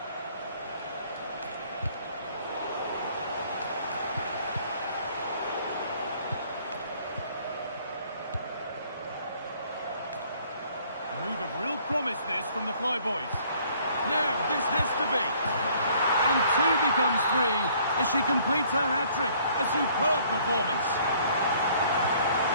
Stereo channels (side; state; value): both; inverted; correlation -0.59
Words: A move of real promise this from the Flyboys. Now this has to be. And two becomes three as she completes her hat-trick. A superb performance.